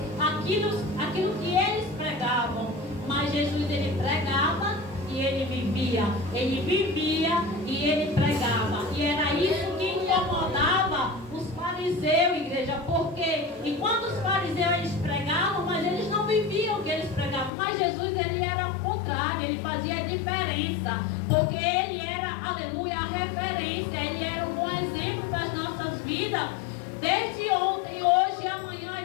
aquilo que eles pregavam. Mas Jesus, ele pregava e ele vivia. Ele vivia e ele pregava. E era isso que incomodava os fariseus, igreja. Porque enquanto os fariseus eles pregavam, mas eles não viviam o que eles pregavam. Mas Jesus, ele era o contrário, ele fazia a diferença. Porque ele era, aleluia, a referência. Ele era um bom exemplo das nossas vidas. Desde ontem, hoje e amanhã,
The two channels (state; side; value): drops out; right; at 17.5 s